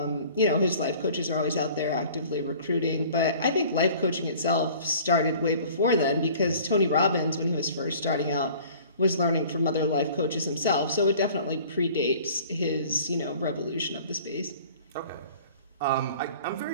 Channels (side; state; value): both; inverted; correlation -0.48